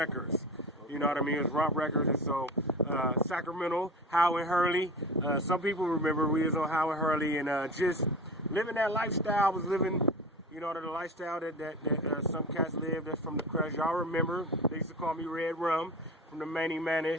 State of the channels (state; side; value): normal; both; correlation 0.33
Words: You know what I mean? It was Romp Records, and so Sacramento, Howard Hurley. Some people remember we was on Howard Hurley, and just living that lifestyle. I was living, you know, the lifestyle that some cats live. That's from the crush. Y'all remember? They used to call me Red Rum from the Manny